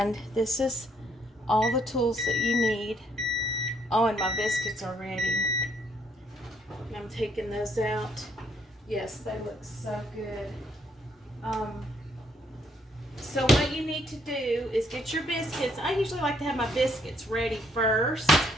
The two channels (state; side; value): normal; both; correlation 0.69